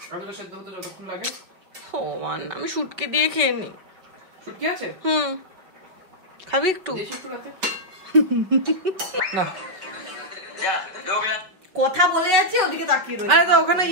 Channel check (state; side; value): late; left; 4.9 ms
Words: আলুটা সেদ্ধ হতে যতক্ষণ লাগে। ও মান, আমি শুটকি দিয়ে খেয়ে নি। শুটকি আছে? খাবি একটু? না, কথা বলে যাচ্ছে, ওদিকে তাকিয়ে রয়েছে। আরে তো ওখানে